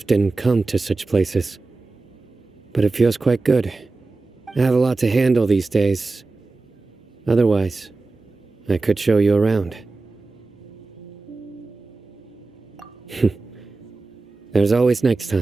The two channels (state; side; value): quieter; left; 3.6 dB